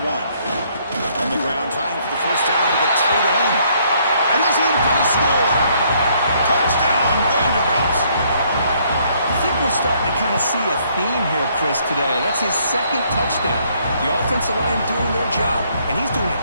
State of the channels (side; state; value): both; inverted; correlation -0.67